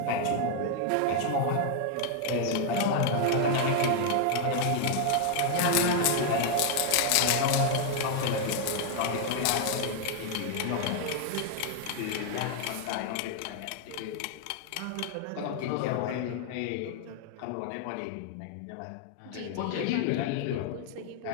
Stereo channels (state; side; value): different; both; correlation 0.00